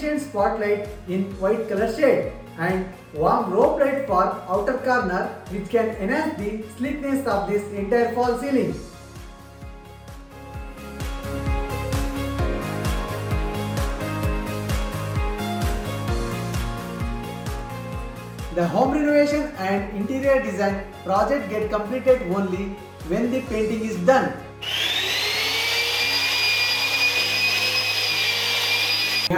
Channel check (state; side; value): identical; both; correlation 1.00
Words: spotlight in white color shade and warm rope light for outer corner, which can enhance the sleekness of this entire fall ceiling. The home renovation and interior design project get completed only when the painting is done. We